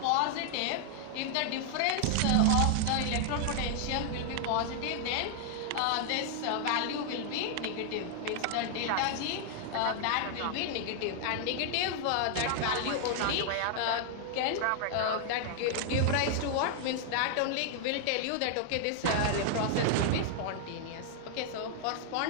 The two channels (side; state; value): both; different; correlation 0.00